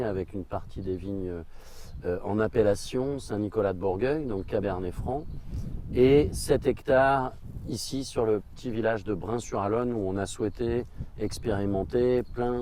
avec une partie des vignes en appellation Saint-Nicolas de Bourgueil, donc Cabernet Franc, et 7 hectares ici sur le petit village de Brain-sur-Alonne où on a souhaité expérimenter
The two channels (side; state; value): both; identical; correlation 1.00